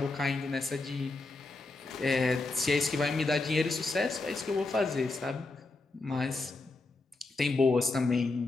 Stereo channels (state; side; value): quieter; right; 3.4 dB